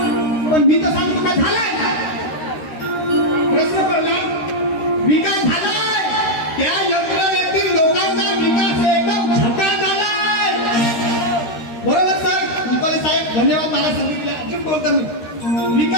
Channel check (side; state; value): right; late; 13 ms